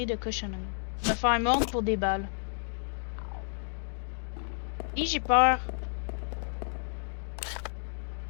de cochonnerie. Me faire mordre pour des balles. Et j'ai peur.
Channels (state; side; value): silent; right; digital silence